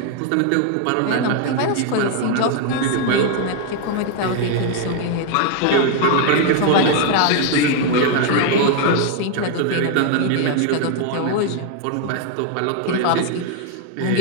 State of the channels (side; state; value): both; different; correlation 0.00